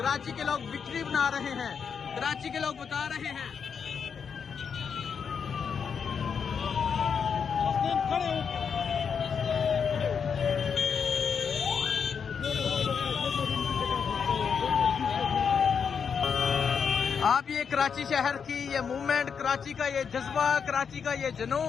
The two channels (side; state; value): right; quieter; 6.6 dB